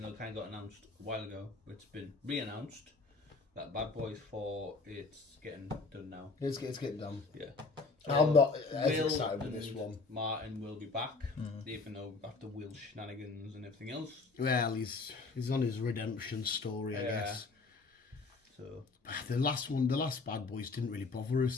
though it kind of got announced a while ago, it's been re-announced that Bad Boys 4, it's getting done now. It's getting done. Yeah. I'm not as excited with this one. Martin will be back, even though after Will's shenanigans and everything else. Well, he's on his redemption story, I guess. So the last Bad Boys didn't really bother us.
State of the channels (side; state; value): right; quieter; 4.0 dB